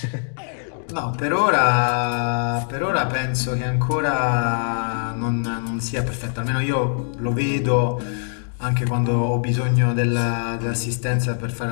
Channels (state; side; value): silent; right; digital silence